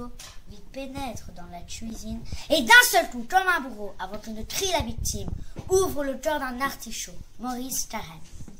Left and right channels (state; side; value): identical; both; correlation 1.00